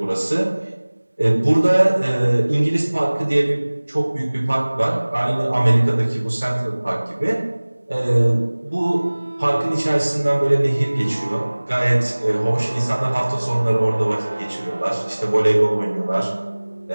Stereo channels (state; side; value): inverted; both; correlation -1.00